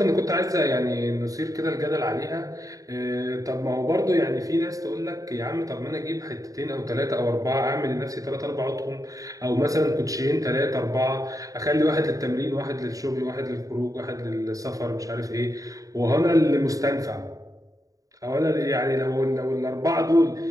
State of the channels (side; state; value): left; late; 0.17 ms